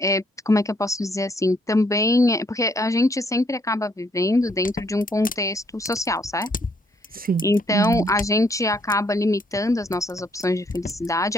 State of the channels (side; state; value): both; normal; correlation 0.69